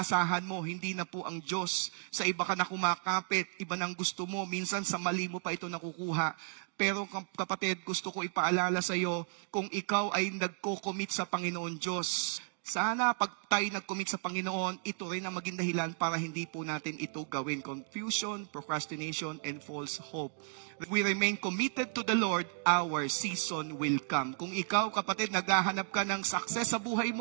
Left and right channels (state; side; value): silent; left; 55 dB below the other